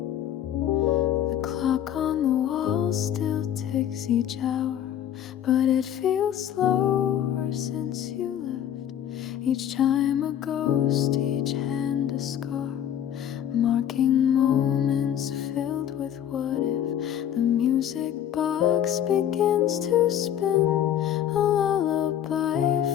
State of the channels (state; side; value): quieter; right; 10.3 dB